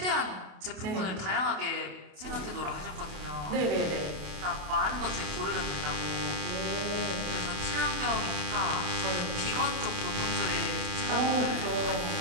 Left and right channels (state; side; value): late; left; 28 ms